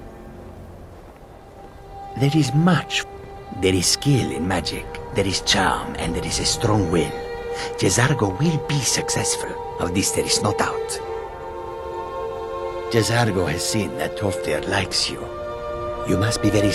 There is much. There is skill in magic, there is charm, and there is a strong will. Jizargo will be successful. Of this there is no doubt. Jizargo has seen that Tolfdir likes you. You must be very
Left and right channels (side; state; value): both; identical; correlation 1.00